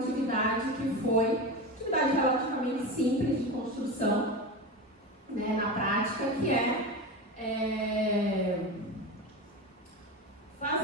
que foi atividade relativamente simples de construção, né, na prática, que é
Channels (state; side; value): normal; both; correlation 0.24